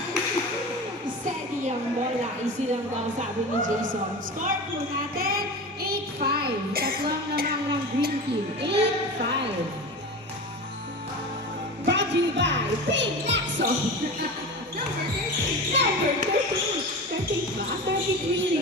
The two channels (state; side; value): normal; both; correlation 0.30